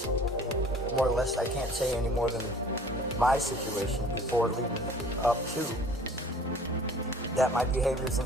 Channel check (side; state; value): both; normal; correlation 0.50